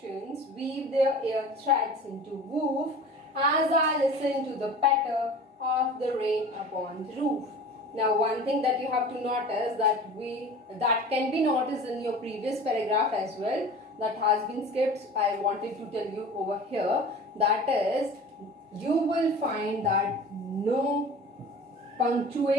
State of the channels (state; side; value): normal; both; correlation 0.39